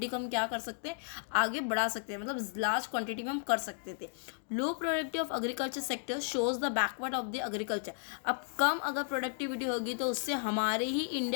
को हम क्या कर सकते हैं, आगे बढ़ा सकते हैं, मतलब लार्ज क्वांटिटी में हम कर सकते थे। Low productive of agriculture sector shows the backward of the agriculture. अब कम अगर प्रोडक्टिविटी होगी तो उससे हमारे ही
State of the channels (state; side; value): silent; right; digital silence